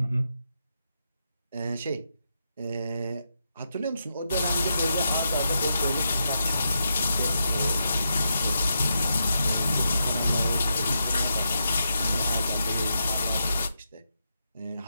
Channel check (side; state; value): both; inverted; correlation -0.84